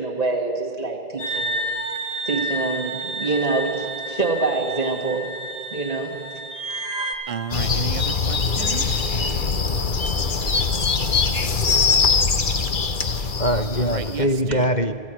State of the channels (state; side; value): late; right; 2.3 ms